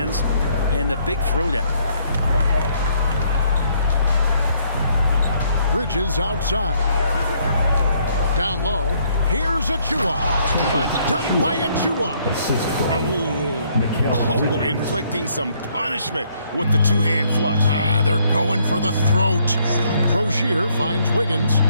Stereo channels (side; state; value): both; inverted; correlation -0.68